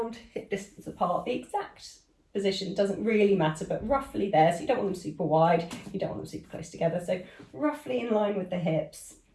hip distance apart. The exact position doesn't really matter, but roughly there. So you don't want them super wide, you don't want them super close together. So roughly in line with the hips,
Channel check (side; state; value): both; identical; correlation 1.00